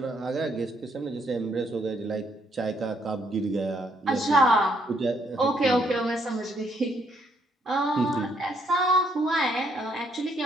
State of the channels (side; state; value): both; normal; correlation 0.71